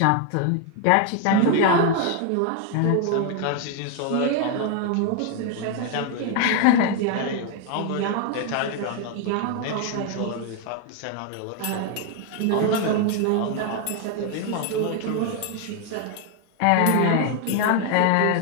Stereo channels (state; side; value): different; both; correlation 0.01